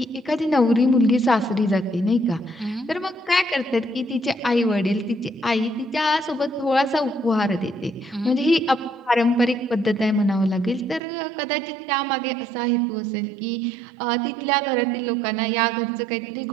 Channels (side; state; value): left; drops out; at 11.0 s